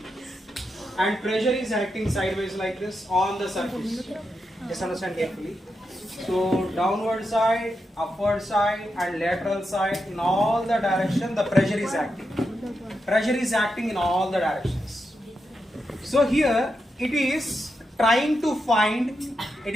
and pressure is acting sideways like this on the surface. Just understand carefully. So downward side, upward side and lateral side, in all the direction the pressure is acting. Pressure is acting in all the directions. So here it is trying to find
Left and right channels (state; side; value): normal; both; correlation 0.86